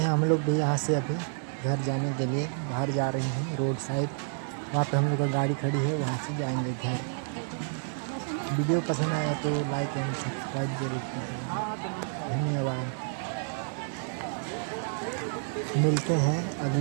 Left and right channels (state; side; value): silent; left; digital silence